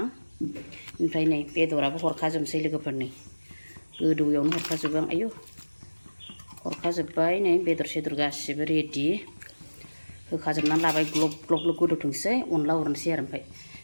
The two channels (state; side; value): inverted; both; correlation -1.00